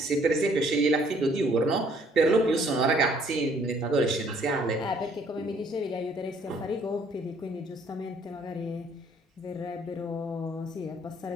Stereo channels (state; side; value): normal; both; correlation 0.62